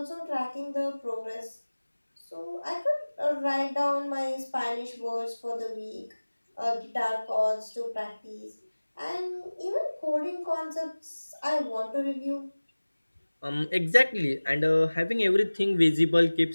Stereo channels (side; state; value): both; inverted; correlation -1.00